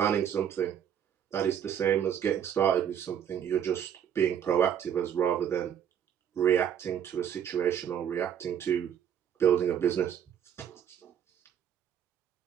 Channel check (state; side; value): quieter; left; 9.2 dB